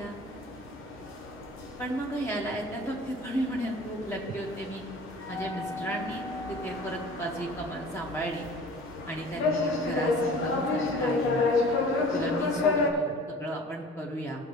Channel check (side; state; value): both; normal; correlation 0.44